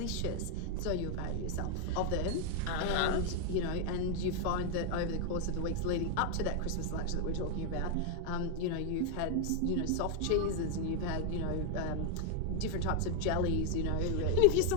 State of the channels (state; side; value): different; both; correlation 0.00